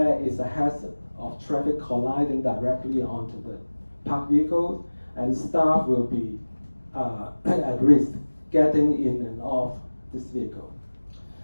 is a hazard of traffic colliding directly onto the parked vehicles, and staff will be at risk getting in and off this vehicle.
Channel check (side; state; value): both; inverted; correlation -1.00